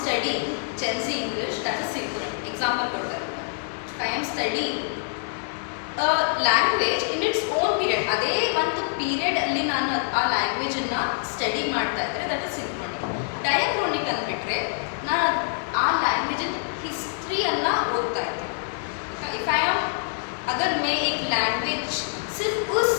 studying Gen Z English, that is synchronic. Example ಕೊಡ್ತಾರೆ. If I am studying a language in its own period, ಅದೇ ಒಂದು period ಅಲ್ಲಿ ನಾನು ಆ language ಅನ್ನ study ಮಾಡ್ತಾ ಇದ್ರೆ that is ಸಿಂಕ್ರೋನಿಕ್. ಡಯಾಕ್ರೋನಿಕ್ ಅಂದ್ಬಿಟ್ರೆ ನಾನು ಆ ಲ್ಯಾಂಗ್ವೇಜ್ ಹಿಸ್ಟ್ರಿಯನ್ನ ಓದ್ತಾ ಇದ್ದೆ. ಇಫ್ ಐ ಆಮ್ अगर मैं एक लैंग्वेज सिर्फ उस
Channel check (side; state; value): right; silent; digital silence